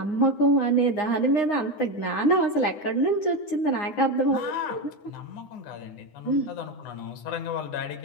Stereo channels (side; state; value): right; late; 9.8 ms